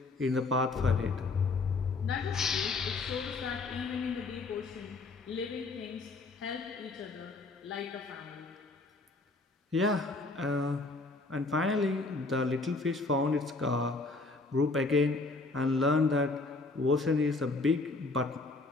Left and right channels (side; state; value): right; quieter; 3.5 dB